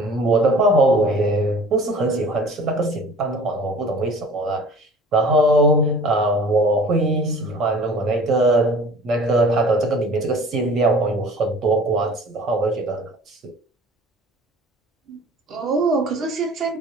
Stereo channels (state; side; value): normal; both; correlation 0.46